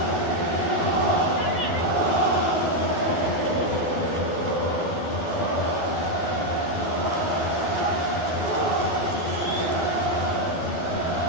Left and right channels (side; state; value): right; late; 12 ms